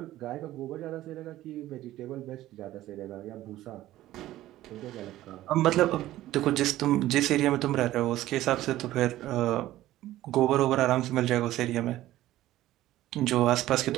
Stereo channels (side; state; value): left; quieter; 14.9 dB